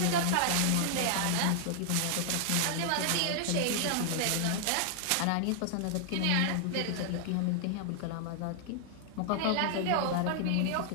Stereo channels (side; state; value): both; different; correlation 0.00